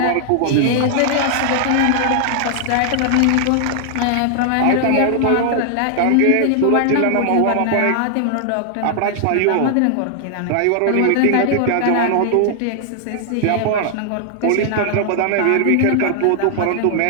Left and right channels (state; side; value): different; both; correlation 0.00